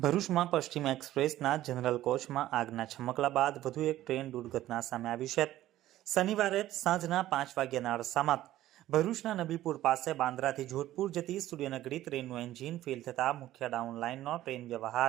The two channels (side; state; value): left; quieter; 14.2 dB